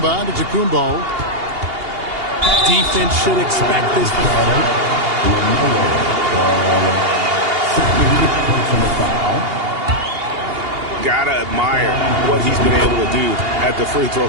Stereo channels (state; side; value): late; left; 2.8 ms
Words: Antetokounmpo. Defense should expect this. Gotta admire what he's been able to do at the free throw